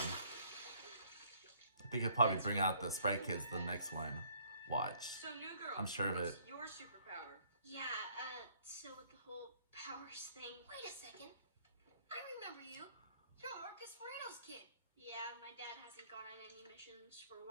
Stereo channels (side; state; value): both; inverted; correlation -0.62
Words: I think he'll probably bring out the Sprite Kids the next one. Watch. So, new girl. I'm sure of it. What's your superpower? Yeah, so with the whole powers thing. Wait a second. I remember you. You're Marcus Moreno's kid. Yeah, my dad hasn't gone on any missions for a